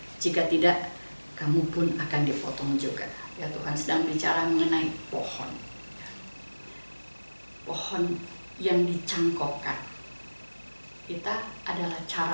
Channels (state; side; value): inverted; both; correlation -1.00